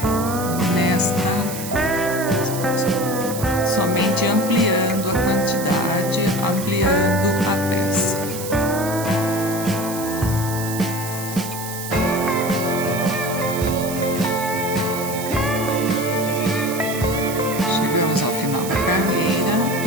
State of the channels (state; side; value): noise; right; hiss, 9 dB below the sound